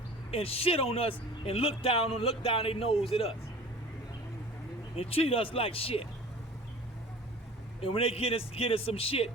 and shit on us and look down their nose at us. And treat us like shit. And when they get us some shit,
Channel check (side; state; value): both; normal; correlation 0.42